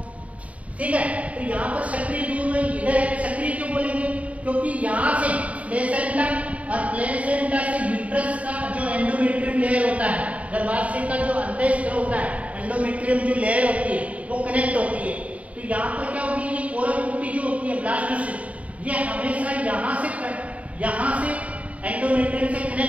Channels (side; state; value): left; late; 0.067 ms